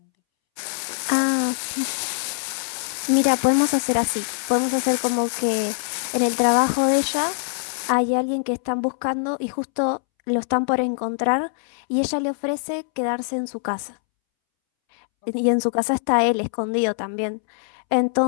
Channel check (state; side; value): silent; right; 64 dB below the other